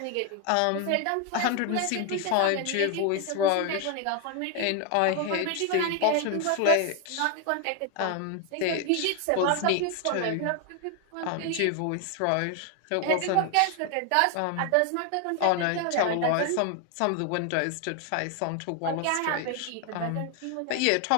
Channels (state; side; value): different; both; correlation 0.01